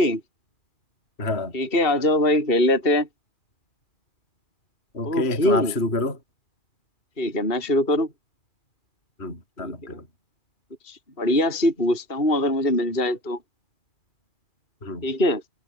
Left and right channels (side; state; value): right; late; 2.7 ms